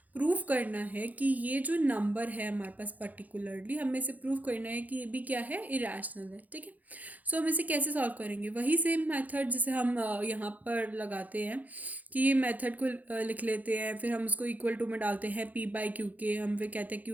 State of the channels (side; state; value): left; late; 0.079 ms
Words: प्रूफ करना है कि ये जो नंबर है हमारे पास पर्टिकुलरली, हमें इसे प्रूफ करना है कि ये भी क्या है, इरेशनल है। ठीक है, सो हम इसे कैसे सॉल्व करेंगे, वही सेम मेथड जिसे हम यहाँ पर लगाते हैं कि ये मेथड को लिख लेते हैं, फिर हम उसको इक्वल टू में डालते हैं p/q के। हम फिर कहते हैं